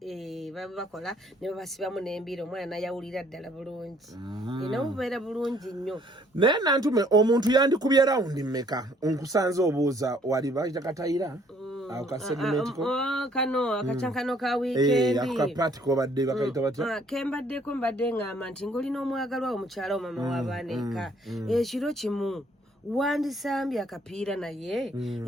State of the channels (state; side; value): normal; both; correlation 0.62